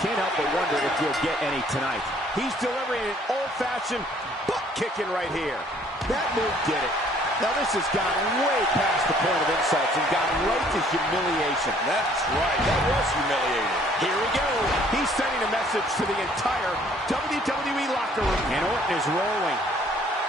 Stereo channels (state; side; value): normal; both; correlation 0.60